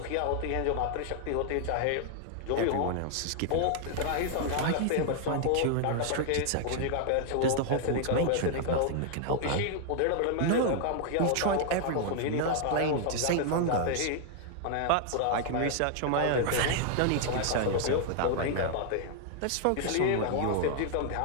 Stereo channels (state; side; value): different; both; correlation 0.00